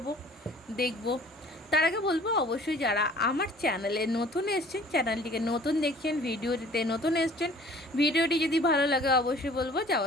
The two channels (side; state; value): both; normal; correlation 0.51